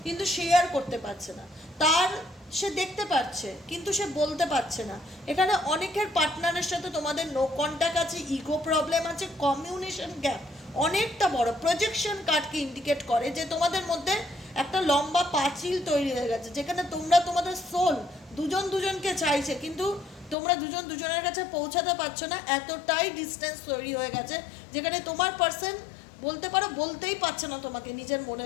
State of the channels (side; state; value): right; drops out; at 20.4 s